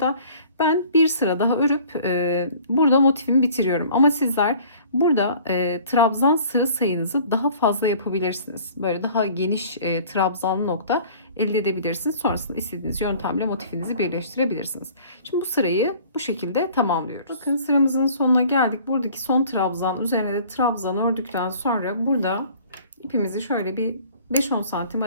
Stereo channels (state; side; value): inverted; both; correlation -0.50